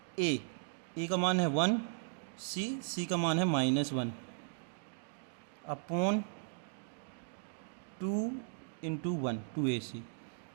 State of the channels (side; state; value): left; silent; digital silence